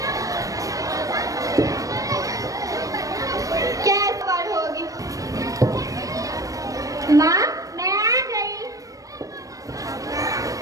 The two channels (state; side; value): late; left; 0.16 ms